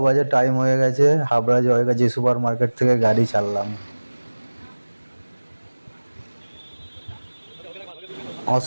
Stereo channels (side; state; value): both; inverted; correlation -1.00